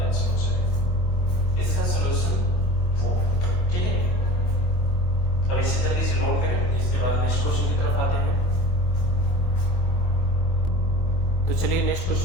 आंसर हो जाएगा, इसका सॉल्यूशन वो, ठीक है। अब इसे जल्दी से नोट करें, इसके बाद नेक्स्ट क्वेश्चन की तरफ आते हैं। तो चलिए नेक्स्ट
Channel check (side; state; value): right; late; 24 ms